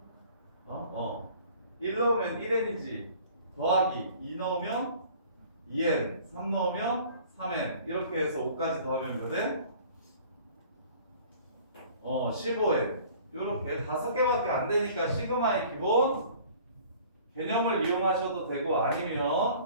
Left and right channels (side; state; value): both; inverted; correlation -0.50